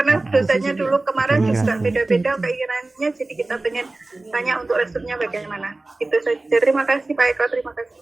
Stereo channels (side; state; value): left; quieter; 3.0 dB